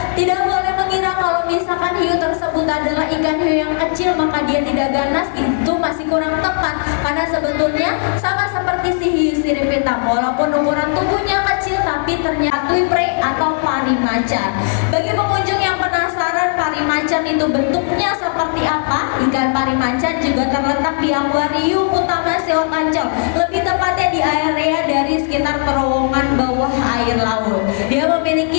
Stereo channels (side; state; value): right; silent; 66 dB below the other